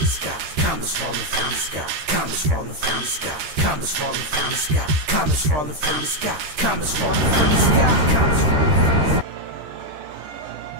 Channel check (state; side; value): late; left; 13 ms